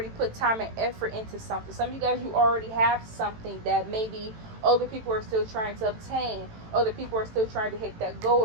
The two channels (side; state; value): left; late; 18 ms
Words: put time and effort into something. Some of you guys, you already have something that maybe other people are still trying to obtain. Other people are still trying to hit that goal,